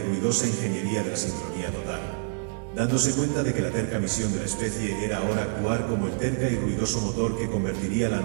ruidosa ingeniería de la sincronía total, dándose cuenta de que la terca misión de la especie era ahora actuar como el terca y ruidoso motor que convertiría la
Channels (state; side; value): silent; left; 60 dB below the other